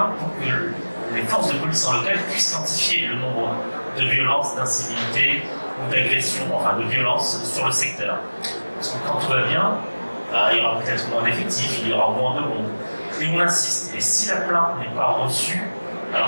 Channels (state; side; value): inverted; both; correlation -1.00